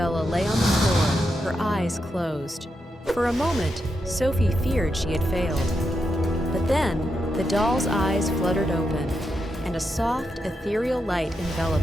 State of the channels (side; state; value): both; normal; correlation 0.85